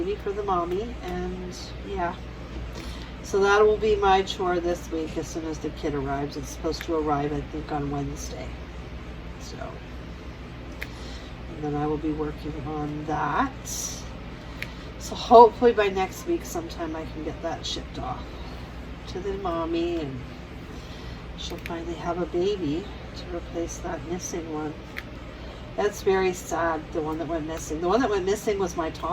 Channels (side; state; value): both; identical; correlation 1.00